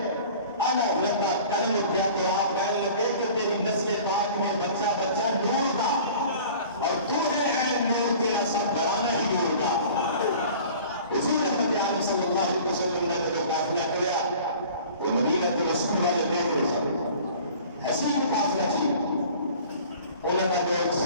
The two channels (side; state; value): both; inverted; correlation -0.45